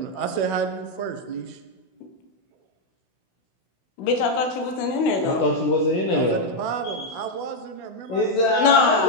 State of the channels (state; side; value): late; right; 16 ms